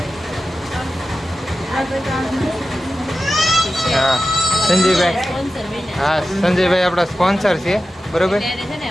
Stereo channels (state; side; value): normal; both; correlation 0.93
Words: હા, સંજયભાઈ. હા, સંજયભાઈ આપણા સ્પોન્સર છે, બરોબર.